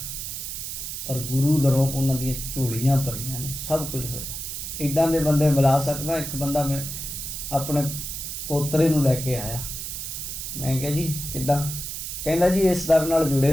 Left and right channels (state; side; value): noise; right; hiss, 6 dB below the sound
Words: ਪਰ ਗੁਰੂ ਦਰੋਂ ਉਹਨਾਂ ਦੀਆਂ ਝੋਲੀਆਂ ਭਰੀਆਂ ਨੇ, ਸਭ ਕੁਝ ਹੋਇਆ। ਇੱਦਾਂ ਦੇ ਬੰਦੇ ਮਿਲਾ ਸਕਦਾ। ਇੱਕ ਬੰਦਾ ਮੈਂ ਆਪਣੇ ਪੋਤਰੇ ਨੂੰ ਲੈ ਕੇ ਆਇਆ, ਮੈਂ ਕਿਹਾ ਜੀ ਕਿੱਦਾਂ? ਕਹਿੰਦਾ ਜੀ ਇਸ ਦਰ ਨਾਲ